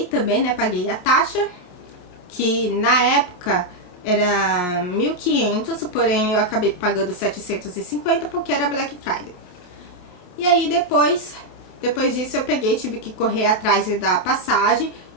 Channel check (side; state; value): right; late; 28 ms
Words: também, né? Paguei a taxa, que na época era 1.500, porém eu acabei pagando 750 porque era Black Friday. E aí depois disso eu tive que correr atrás da passagem